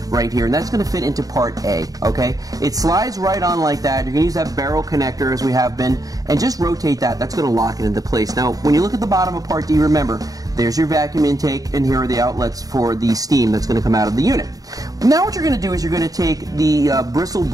right here, and that's going to fit into part A, okay? It slides right on like that. You're going to use that barrel connector as we have been, and just rotate that. That's going to lock it into place. Now, when you look at the bottom of part D, remember, there's your vacuum intake, and here are the outlets for the steam that's going to come out of the unit. Now what you're going to do is you're going to take the bristle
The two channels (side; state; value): left; late; 0.18 ms